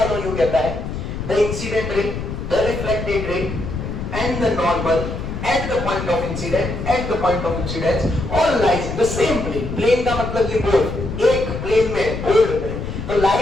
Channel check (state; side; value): noise; left; rumble, 6 dB below the sound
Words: लॉ यू कहता है, the incident ray, the reflected ray and the normal at the point of incidence all lies in the same plane. plane का मतलब ये बोर्ड, एक प्लेन में, बोर्ड में. तो